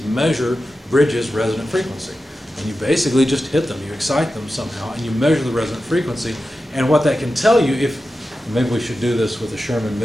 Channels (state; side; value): normal; both; correlation 0.92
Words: measure bridges' resonant frequency. And you basically just hit them, you excite them somehow, and you measure the resonant frequency. And what that can tell you, maybe we should do this with the